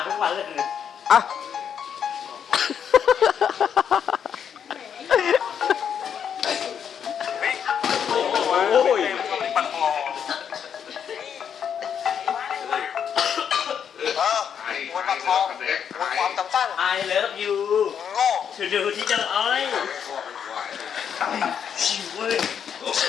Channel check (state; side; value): quieter; right; 8.0 dB